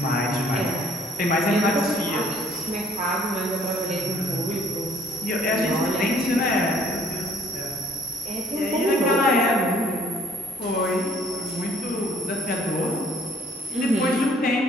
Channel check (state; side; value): normal; both; correlation 0.59